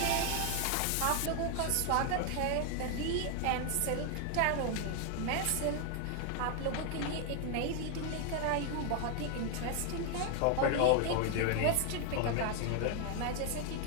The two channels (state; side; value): different; both; correlation 0.00